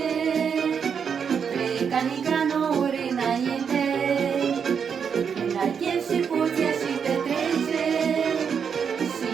Pleca Nicanori înainte, când ai chef și poți ieși petrece, și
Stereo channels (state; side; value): quieter; left; 6.9 dB